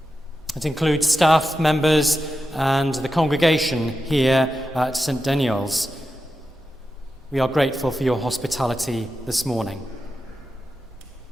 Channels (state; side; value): normal; both; correlation 0.90